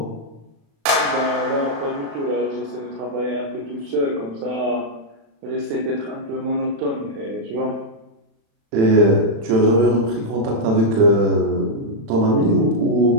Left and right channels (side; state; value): left; late; 36 ms